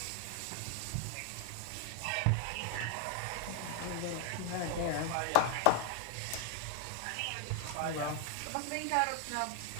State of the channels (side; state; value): both; different; correlation 0.00